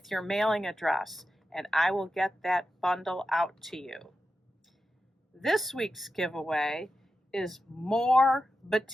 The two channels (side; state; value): both; normal; correlation 0.91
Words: your mailing address, and I will get that bundle out to you. This week's giveaway is more